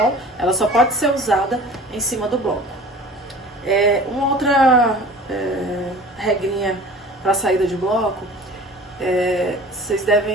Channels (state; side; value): normal; both; correlation 0.43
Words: Ela só pode ser usada em cima do bloco. Uma outra regrinha para a saída de bloco, vocês